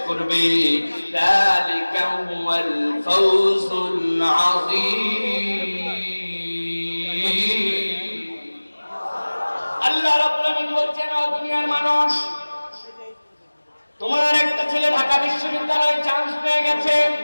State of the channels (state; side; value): inverted; both; correlation -1.00